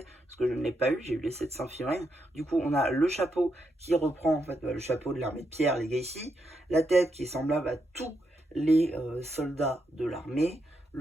parce que je ne l'ai pas eu, j'ai eu les 700 figurines. Du coup, on a le chapeau qui reprend en fait le chapeau de l'armée de pierre, les Legacy, la tête qui est semblable à tous les soldats de l'armée,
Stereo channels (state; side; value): normal; both; correlation 0.81